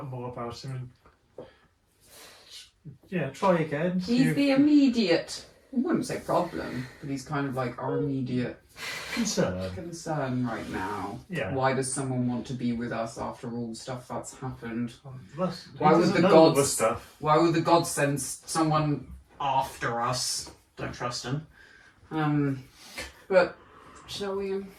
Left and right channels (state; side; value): identical; both; correlation 1.00